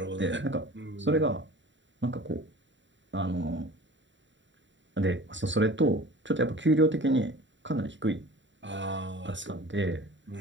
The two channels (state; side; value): late; left; 0.54 ms